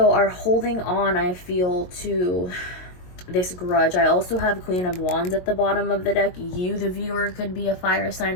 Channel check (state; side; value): late; right; 22 ms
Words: are holding on, I feel, to this grudge. I also have Queen of Wands at the bottom of the deck. You, the viewer, could be a fire